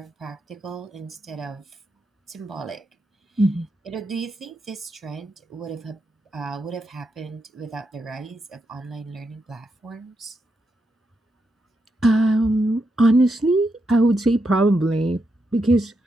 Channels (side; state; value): both; normal; correlation 0.83